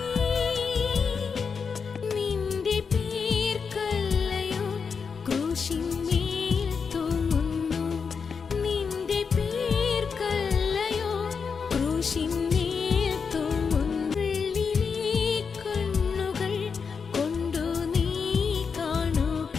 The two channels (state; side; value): quieter; right; 5.7 dB